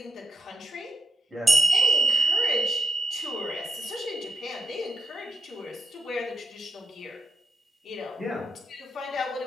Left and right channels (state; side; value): normal; both; correlation 0.79